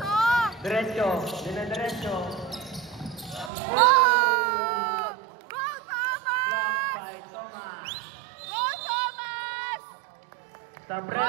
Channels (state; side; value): drops out; left; at 3.5 s